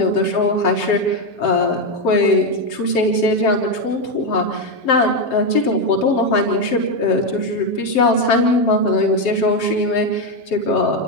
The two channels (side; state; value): right; late; 7.6 ms